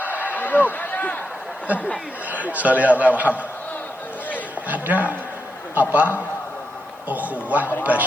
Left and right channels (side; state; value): right; noise; hiss, 29 dB below the sound